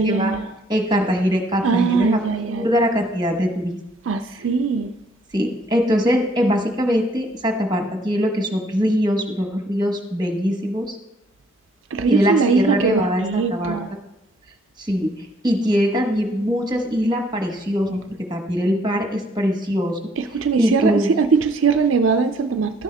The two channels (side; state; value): both; normal; correlation 0.63